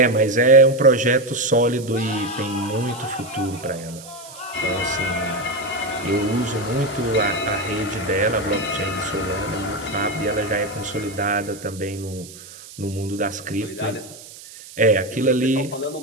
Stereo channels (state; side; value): noise; right; hiss, 17 dB below the sound